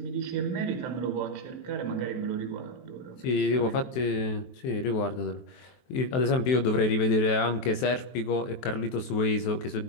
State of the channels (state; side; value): late; right; 23 ms